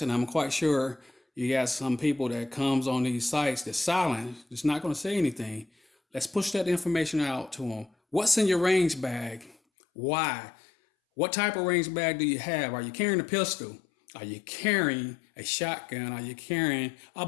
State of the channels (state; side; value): drops out; right; at 9.6 s